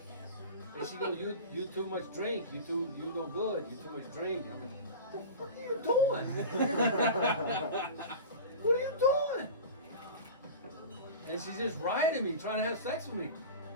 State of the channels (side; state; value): both; inverted; correlation -0.32